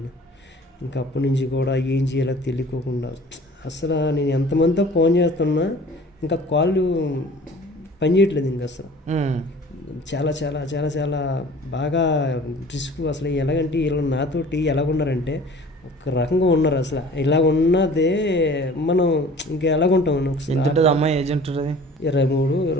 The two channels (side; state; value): both; normal; correlation 0.47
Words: ఇంకా అప్పటి నుంచి కూడా ఏం చేయాలో తెలియకోకుండా అసలు నేను ఎంతమందితో ఫోన్ చేస్తున్నా ఇంకా కాళ్ళు పని చేయట్లేదు. ఇంకా అసలు చాలా చాలా చాలా చాలా బాగా రిస్క్. అసలు ఎలాగంటే వీళ్ళు నాతోటి ఎలాగున్నారంటే ఒక రకంగా ఉన్నారు. అసలు ఇలా ఉన్నదే మనం ఇంకా ఎలాగుంటాం. ఒకసారి అమ్మాయి ఏజ్ ఉంటుంది